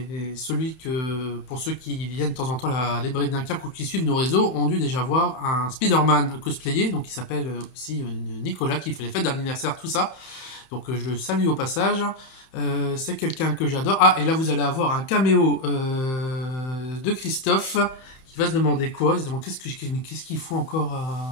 pour ceux qui viennent de temps en temps à la librairie de Dunkerque ou qui suivent nos réseaux, ont dû déjà voir un Spider-Man cosplayé, donc il s'appelle aussi Nicolas, qui fait les fêtes d'anniversaire, tout ça. Donc je le salue au passage. C'est quelqu'un que j'adore. Ah, et là vous allez avoir un caméo de Christophe, qui va se demander quoi? Il se demande qu'est-ce qu'il faut encore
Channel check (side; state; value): right; late; 31 ms